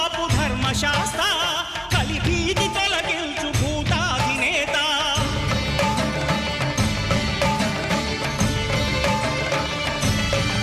ధర్మశాస్త్ర కలిభీతి తొలగించు భూతాధినేత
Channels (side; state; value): both; identical; correlation 1.00